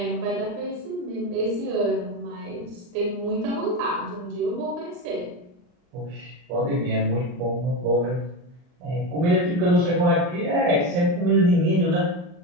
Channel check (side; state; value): left; late; 39 ms